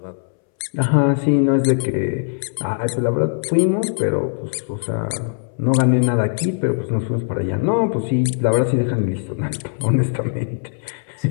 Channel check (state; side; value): silent; right; 66 dB below the other